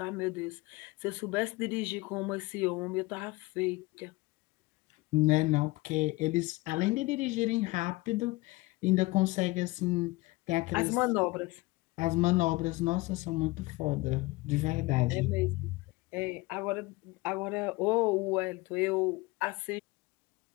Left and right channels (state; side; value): quieter; right; 22.0 dB